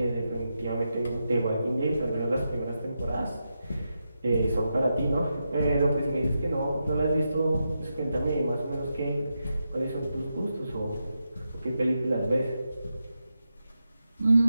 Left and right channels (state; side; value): inverted; both; correlation -0.87